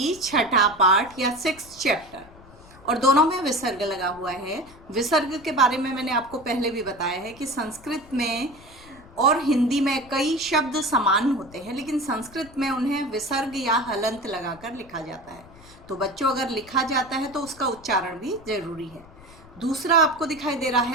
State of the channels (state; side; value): noise; left; rumble, 22 dB below the sound